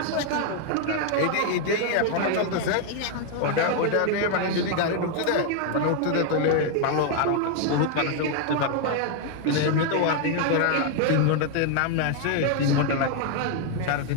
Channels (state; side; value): different; both; correlation 0.01